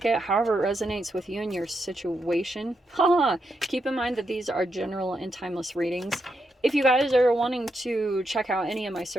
it however it resonates with you and your situation. Keep in mind that these are general and timeless readings. If you guys are wanting to check out any of my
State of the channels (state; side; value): normal; both; correlation 0.83